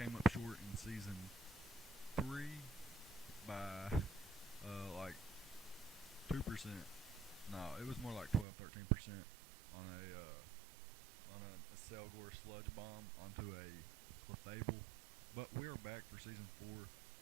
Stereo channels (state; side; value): drops out; left; at 8.5 s